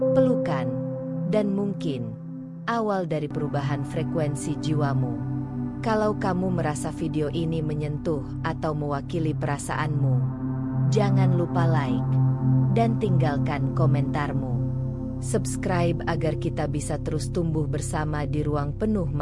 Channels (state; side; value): identical; both; correlation 1.00